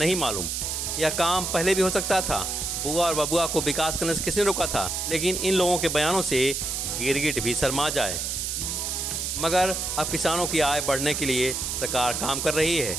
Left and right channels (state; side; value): noise; right; hiss, 2 dB below the sound